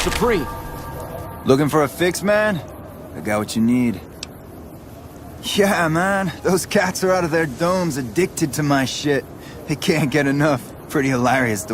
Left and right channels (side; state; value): both; identical; correlation 1.00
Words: supreme. Looking for a fix, man? I got what you need. Yeah, man. Those cats are out of their domes addicted to my shit. They can't get enough. Pretty hilarious